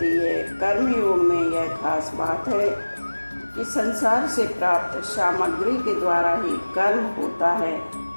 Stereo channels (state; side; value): inverted; both; correlation -1.00